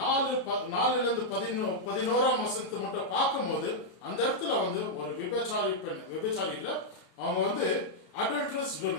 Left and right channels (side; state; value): right; late; 33 ms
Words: வசனத்தை மட்டும் பார்க்கும் போது அந்த இடத்துல வந்து ஒரு விபச்சாரி பெண், விபச்சாரி இல்ல, அவங்க வந்து அடல்ட்ரஸ்